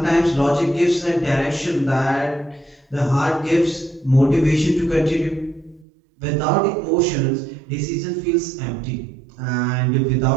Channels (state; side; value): drops out; left; at 5.9 s